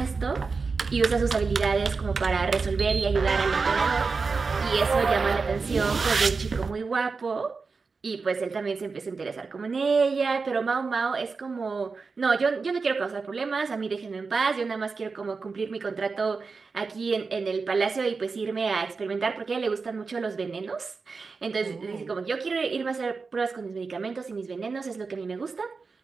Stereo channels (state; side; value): quieter; left; 4.6 dB